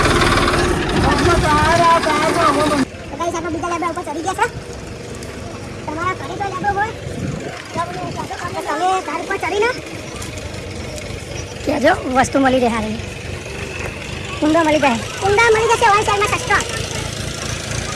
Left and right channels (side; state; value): both; identical; correlation 1.00